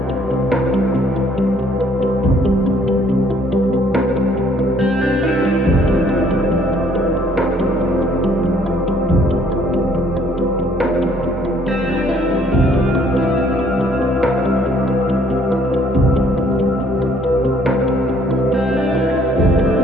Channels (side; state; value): both; normal; correlation 0.63